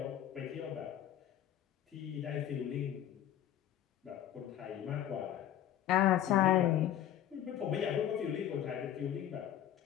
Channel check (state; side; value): quieter; right; 11.4 dB